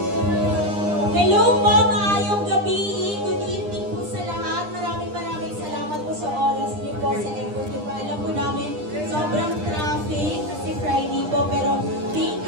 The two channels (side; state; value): left; late; 9.9 ms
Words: Hello po, maayong gabi. Good evening po sa lahat. Maraming salamat po sa oras niyo po, sa effort niyo po. Alam po namin, sobrang traffic kasi Friday po. Pero thank